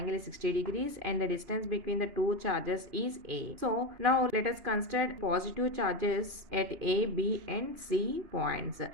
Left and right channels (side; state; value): left; late; 2.9 ms